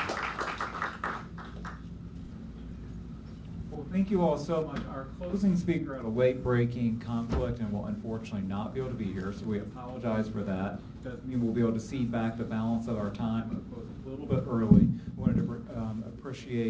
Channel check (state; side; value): identical; both; correlation 1.00